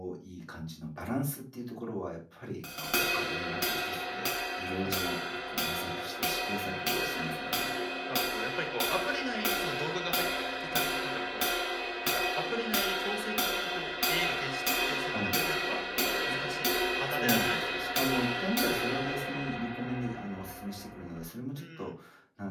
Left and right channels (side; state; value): both; identical; correlation 1.00